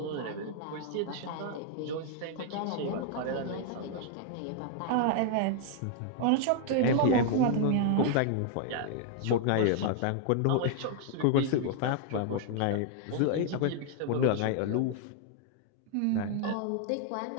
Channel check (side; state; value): both; different; correlation 0.00